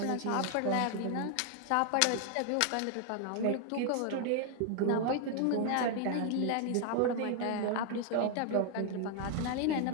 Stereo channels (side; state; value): both; different; correlation 0.00